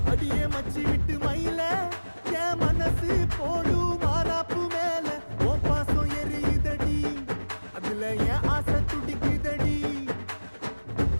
அடியே மச்சி விட்டு மயில என் மனசு போடும் மாறாப்பு மேல ஓ பாசம் எரியுதடி அதுல என் ஆசை துடிக்குதடி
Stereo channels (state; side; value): inverted; both; correlation -1.00